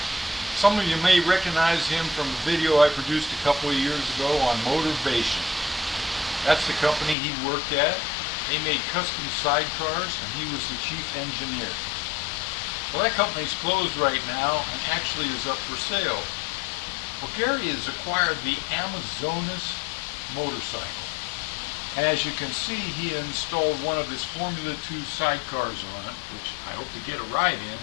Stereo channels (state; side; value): drops out; right; at 7.2 s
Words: Some of you may recognize him from a video I produced a couple of years ago on Motivation. That's the company he worked at. They made custom sidecars and he was the chief engineer. Well, that company's closed right now and actually is up for sale. Well, Gary has acquired the Amazonas motorcycle. And as you can see, he installed one of his Formula 2 sidecars on it, which I hope to get a ride in